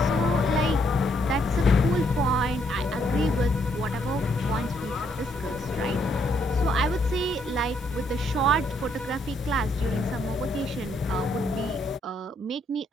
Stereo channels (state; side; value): normal; both; correlation 0.72